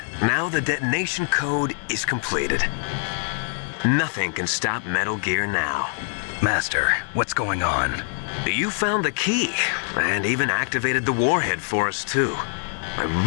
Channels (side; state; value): right; silent; digital silence